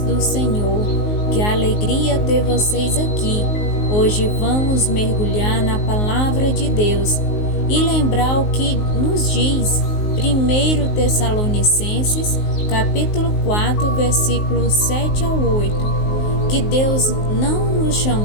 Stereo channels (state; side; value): late; right; 19 ms